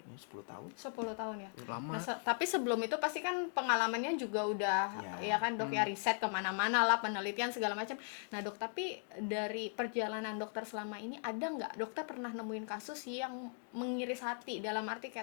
10 tahun. 10 tahun ya. Lama. Nah, tapi sebelum itu pasti kan pengalamannya juga udah Ya. ya kan, Dok, ya, riset kemana-mana lah, penelitian segala macam. Nah, Dok, tapi dari perjalanan dokter selama ini ada nggak dokter pernah nemuin kasus yang mengiris hati, dalam arti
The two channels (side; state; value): right; silent; 52 dB below the other